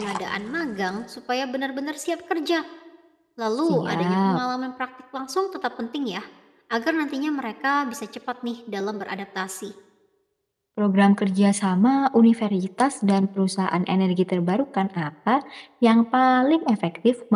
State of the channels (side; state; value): both; identical; correlation 1.00